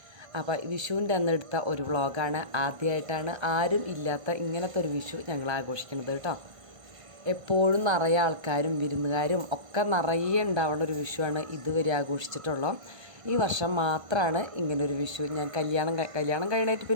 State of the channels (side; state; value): left; late; 1.5 ms